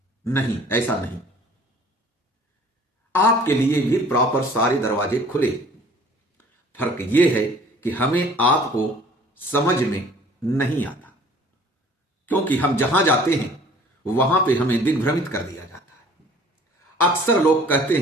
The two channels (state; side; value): normal; both; correlation 0.51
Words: नहीं, ऐसा नहीं। आपके लिए भी प्रॉपर सारे दरवाजे खुले। फर्क यह है कि हमें आपको समझ में नहीं आता, क्योंकि हम जहां जाते हैं वहां पे हमें दिग्भ्रमित कर दिया जाता है। अक्सर लोग कहते